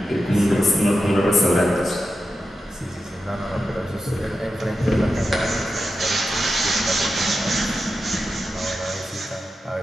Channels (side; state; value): both; normal; correlation 0.90